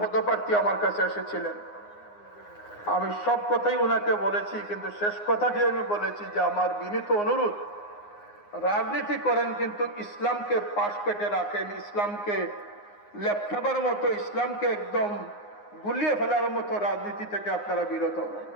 পদপ্রার্থী আমার কাছে এসেছিলেন। আমি সব কথাই ওনাকে বলেছি, কিন্তু শেষ কথাটি আমি বলেছি যে আমার বিনীত অনুরোধ, রাজনীতি করেন কিন্তু ইসলামকে পাশ পেটে রাখেন, ইসলামকে লেপটাবার মতো, ইসলামকে একদম গুলিয়ে ফেলার মতো রাজনীতি থেকে আপনারা বিরত হন।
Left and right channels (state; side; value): late; right; 9.7 ms